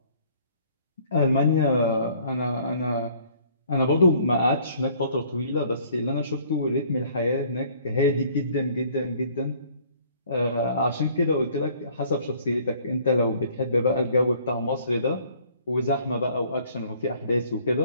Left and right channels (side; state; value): both; inverted; correlation -0.57